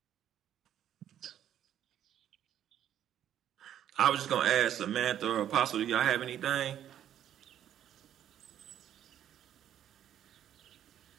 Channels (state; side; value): quieter; left; 10.6 dB